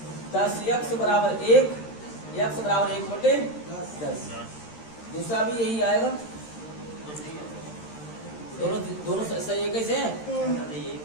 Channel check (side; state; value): right; late; 13 ms